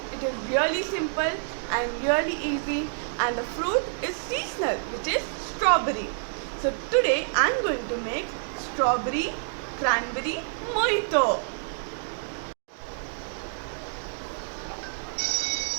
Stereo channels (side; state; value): left; silent; digital silence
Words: It is really simple and really easy, and the fruit is seasonal, which is strawberry. So today I am going to make strawberry cranberry mojito.